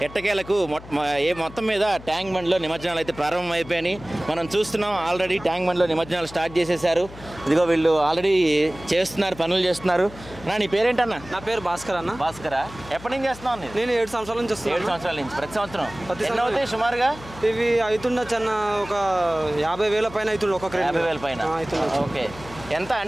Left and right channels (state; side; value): noise; left; hum, 17 dB below the sound